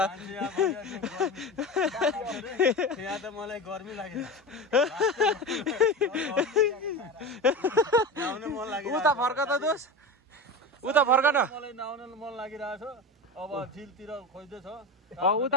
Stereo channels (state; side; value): normal; both; correlation 0.25